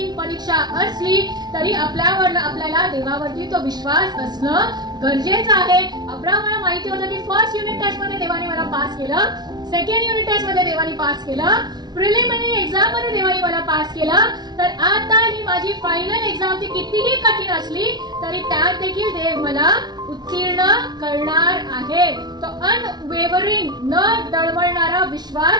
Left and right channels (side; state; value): left; late; 0.20 ms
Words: परीक्षा असली तरी आपल्याला देवावरती तो विश्वास असणं गरजेचं आहे. अब्राहमाला माहिती होतं की फर्स्ट युनिट टेस्ट मध्ये देवाने मला पास केलं, सेकंड युनिट टेस्ट मध्ये देवाने पास केलं, प्रिलिमिनरी एक्झाम मध्ये देवाने मला पास केलं, तर आता ही माझी फायनल एक्झाम ती कितीही कठीण असली तरी त्यात देखील देव मला उत्तीर्ण करणार आहे. तो अनवेवरिंग न डळमळणारा